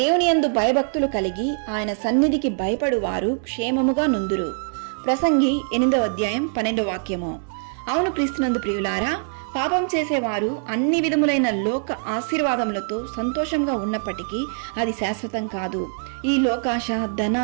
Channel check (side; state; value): left; silent; digital silence